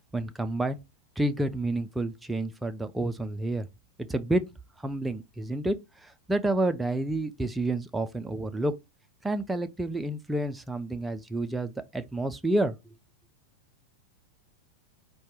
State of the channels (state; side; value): normal; both; correlation 0.83